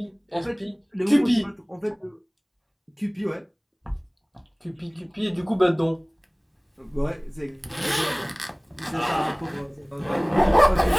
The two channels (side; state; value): both; identical; correlation 1.00